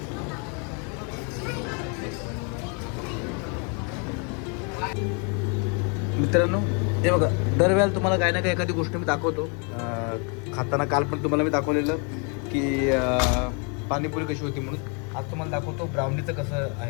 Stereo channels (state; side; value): quieter; right; 35.9 dB